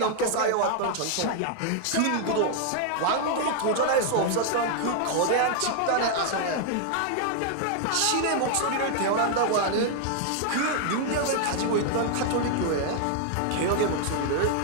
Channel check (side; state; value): both; different; correlation 0.00